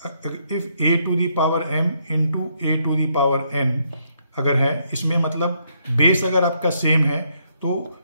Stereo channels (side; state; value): both; inverted; correlation -0.74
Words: if a to the power m into a to the power n अगर है, इसमें मतलब बेस अगर आपका सेम है तो